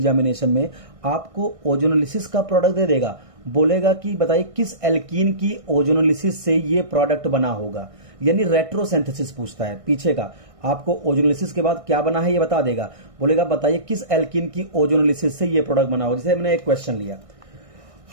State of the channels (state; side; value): late; left; 1.6 ms